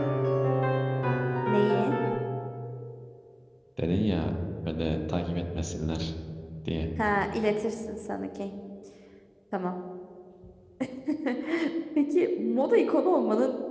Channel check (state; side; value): identical; both; correlation 1.00